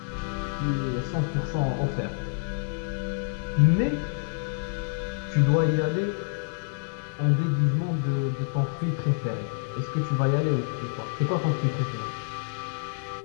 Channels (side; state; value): right; silent; digital silence